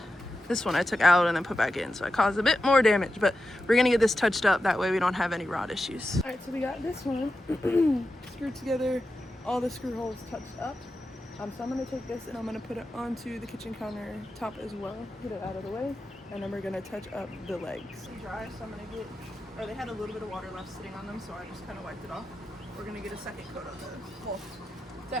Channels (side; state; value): both; normal; correlation 0.91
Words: This one I took out and then put back in, so I caused a bit more damage, but we're gonna get this touched up, that way we don't have any rot issues. All right, so we got this one screwed together, all the screw holes touched up. So I'm gonna take this and I'm gonna put it onto the kitchen counter top as well, get it out of the way, and then we're gonna touch up the legs. Dry, so I'm gonna get, or they had a little bit of water left sitting on them, so I just kind of wiped it off. We're gonna get a second coat on those. Well, it's